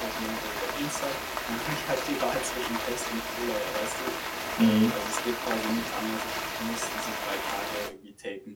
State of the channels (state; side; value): identical; both; correlation 1.00